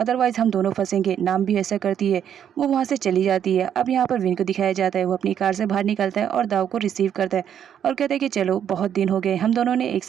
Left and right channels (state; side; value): quieter; left; 9.2 dB